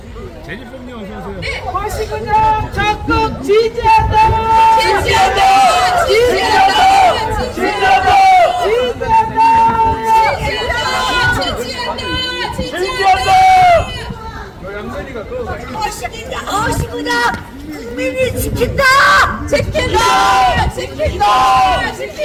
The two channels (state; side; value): identical; both; correlation 1.00